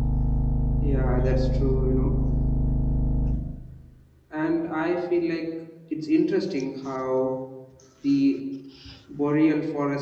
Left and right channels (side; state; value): both; identical; correlation 1.00